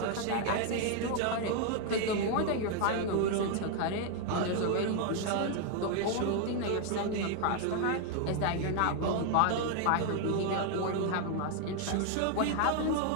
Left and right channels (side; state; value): both; different; correlation 0.00